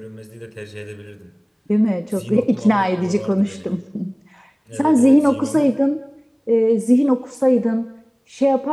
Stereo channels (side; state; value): both; identical; correlation 1.00